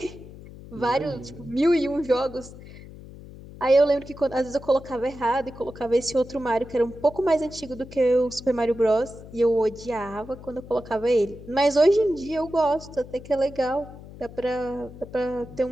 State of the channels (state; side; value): noise; left; hum, 16 dB below the sound